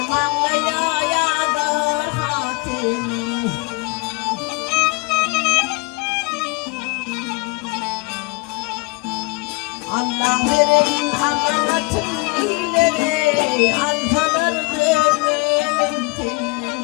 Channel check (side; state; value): right; quieter; 26.8 dB